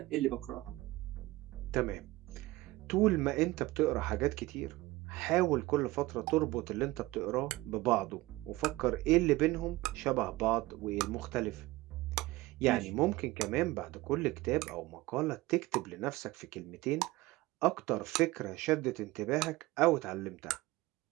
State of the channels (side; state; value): left; quieter; 19.5 dB